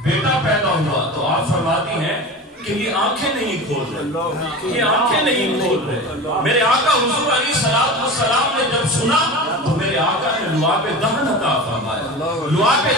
بیٹا پیدا ہوا۔ تو آپ فرماتی ہیں کہ یہ آنکھیں نہیں کھول رہے، یہ آنکھیں نہیں کھول رہے۔ میرے آقا حضور علیہ السلام نے جب سنا تو میرے آقا نے لعاب دہن عطا فرمایا۔ لعاب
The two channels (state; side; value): normal; both; correlation 0.31